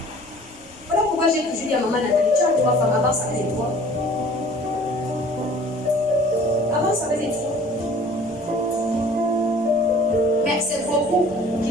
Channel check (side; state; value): left; noise; rumble, 27 dB below the sound